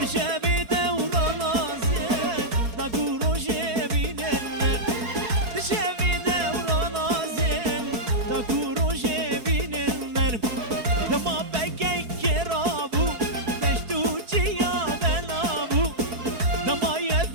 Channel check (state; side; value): late; left; 4.7 ms